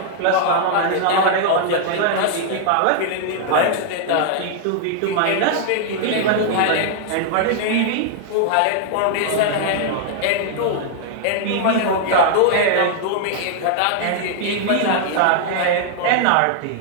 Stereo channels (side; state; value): both; different; correlation 0.00